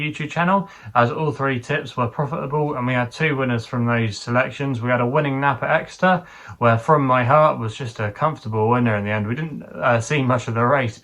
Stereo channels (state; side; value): identical; both; correlation 1.00